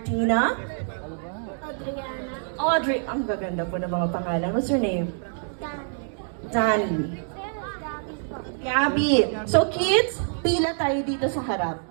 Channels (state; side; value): silent; left; digital silence